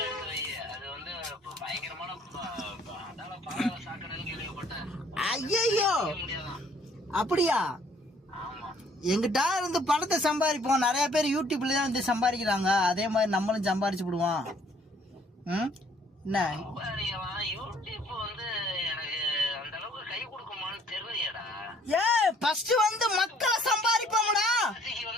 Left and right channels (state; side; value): normal; both; correlation 0.60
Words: எடுத்து வை. அது வந்து பயங்கரமான அதால பாதாள சாக்கடைன்னு கேள்விப்பட்டேன். ஐயோ அப்படியா? ஆமா, எங்கிட்ட இருந்து பணத்தை சம்பாதிப்போம். நிறைய பேர் யூடியூப்ல தான் வந்து சம்பாதிக்கிறாங்க. அதே மாதிரி நம்மளும் சம்பாதிச்சு விடுவோம். என்ன யூடியூப் வந்து எனக்கு அந்த அளவுக்கு கை கொடுக்குமான்னு தெரியலையடா. ஃபர்ஸ்ட் வந்து மக்களை சம்பாதிப்போம்டா.